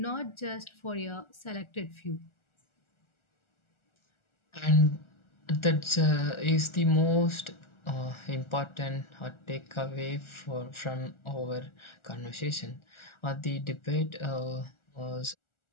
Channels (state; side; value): late; right; 1.4 ms